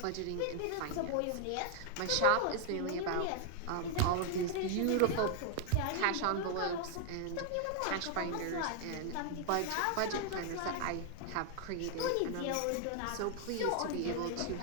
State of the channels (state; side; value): different; both; correlation 0.00